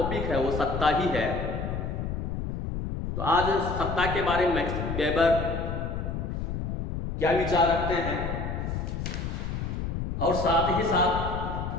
है वो सत्ता ही है। तो आज सत्ता के बारे में मैक्स वेबर क्या विचार रखते हैं और साथ ही साथ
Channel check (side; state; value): left; noise; rumble, 3 dB below the sound